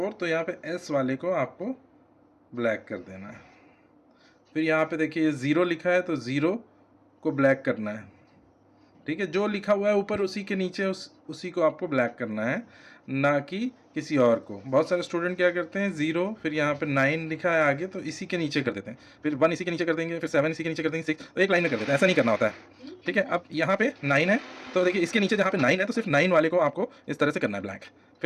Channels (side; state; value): both; identical; correlation 1.00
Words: तो यहाँ पे S वाले को आपको ब्लैक कर देना है। फिर यहाँ पे देखिए 0 लिखा है, तो 0 को ब्लैक करना है, ठीक है। जो लिखा हुआ है ऊपर उसी के नीचे उसी को आपको ब्लैक करना है, ना कि किसी और को। बहुत सारे स्टूडेंट क्या करते हैं, 0 फिर यहाँ पे 9 लिखा है आगे, तो इसी के नीचे कर देते हैं, फिर 1 इसी के नीचे कर देंगे, फिर 7 इसी के नीचे कर देंगे, 6 तो एक लाइन में कर देते हैं। ऐसा नहीं करना होता है, ठीक है। अब यहाँ पे 9 है, तो देखिए इसके नीचे जहाँ पे 9 है तो सिर्फ 9 वाले को आपको इस तरह से करना है ब्लैक।